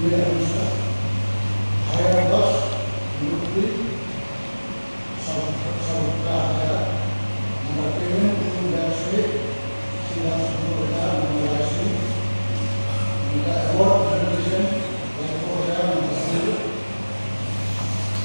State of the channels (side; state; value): both; inverted; correlation -1.00